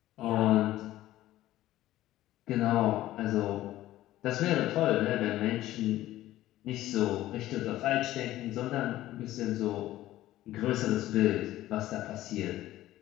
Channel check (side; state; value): right; quieter; 14.9 dB